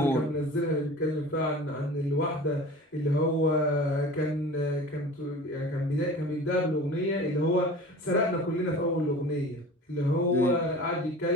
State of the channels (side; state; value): both; normal; correlation 0.39